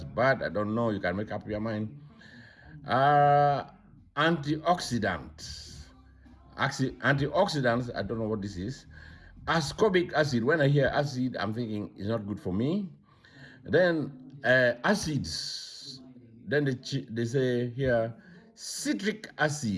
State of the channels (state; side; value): identical; both; correlation 1.00